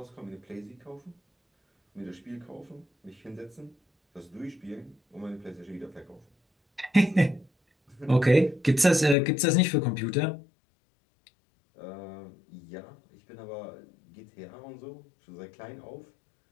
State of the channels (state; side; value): drops out; right; at 9.2 s